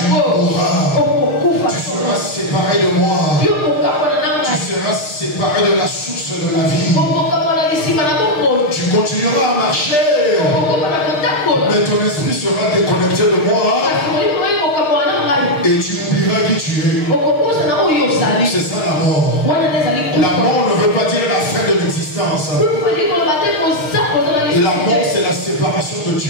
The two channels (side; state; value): right; late; 6.5 ms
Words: séparer de la source de la vie. Tu continueras à marcher, mais ton esprit sera déconnecté de moi et tu oublieras qui tu es. C'est ça la mort. La mort ne veut pas dire la fin de l'existence. La mort, c'est la séparation de